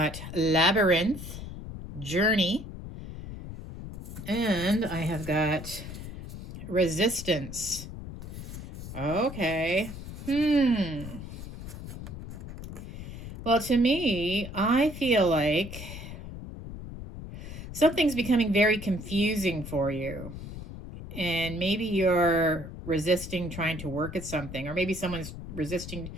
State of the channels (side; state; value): left; noise; rumble, 10 dB below the sound